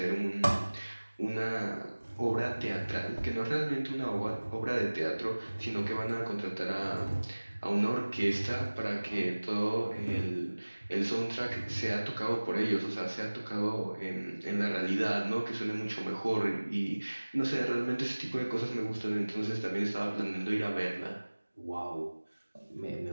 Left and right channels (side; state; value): both; inverted; correlation -1.00